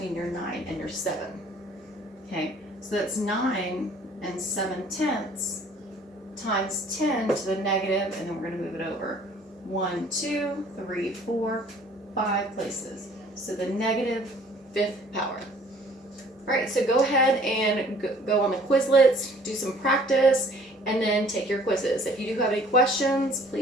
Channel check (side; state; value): both; normal; correlation 0.55